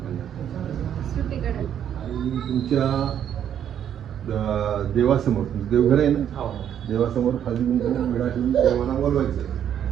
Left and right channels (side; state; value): left; quieter; 9.6 dB